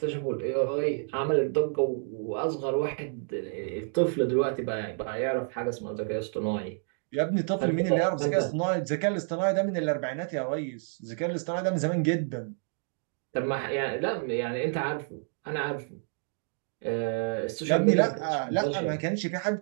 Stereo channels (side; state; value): left; silent; 58 dB below the other